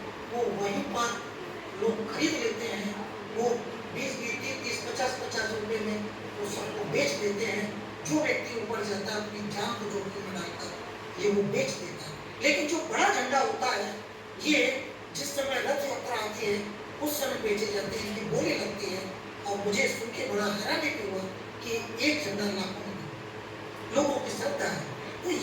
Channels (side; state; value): both; identical; correlation 1.00